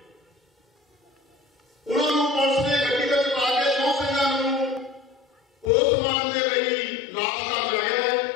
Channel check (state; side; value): drops out; right; at 5.7 s